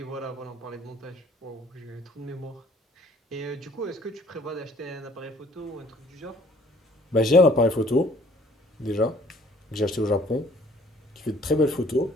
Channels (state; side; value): normal; both; correlation 0.57